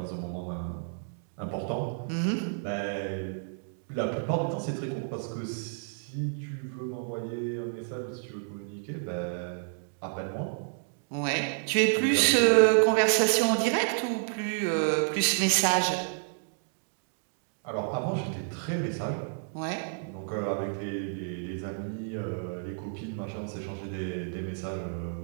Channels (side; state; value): left; silent; digital silence